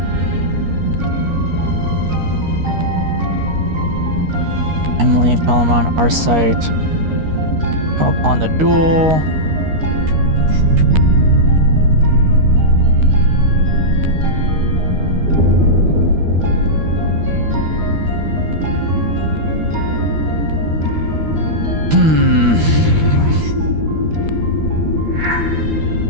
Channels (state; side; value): late; left; 13 ms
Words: Emily and Palamon, our site. Come upon the duel.